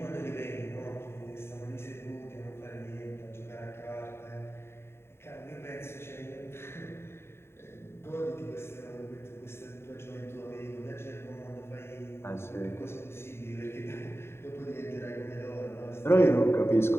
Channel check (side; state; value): right; late; 0.12 ms